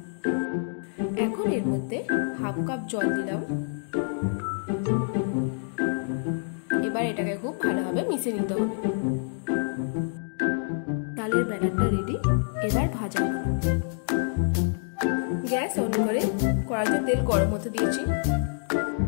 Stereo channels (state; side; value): silent; right; digital silence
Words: এখন এর মধ্যে 1/2 কাপ জল দিলাম। এবার এটাকে খুব ভালোভাবে মিশিয়ে নিতে হবে। তালের ব্যাটারটা রেডি, এবার ভাজার পালা। গ্যাস অন করে কড়াইতে তেল গরম হতে দিয়েছি।